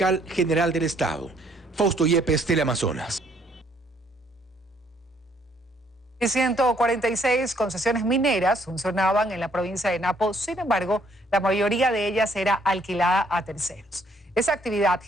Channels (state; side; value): normal; both; correlation 0.66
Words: general del Estado. Fausto Yepes, Teleamazonas. Y 146 concesiones mineras funcionaban en la provincia de Napo, sin embargo, la mayoría de ellas era alquilada a terceros. Esa actividad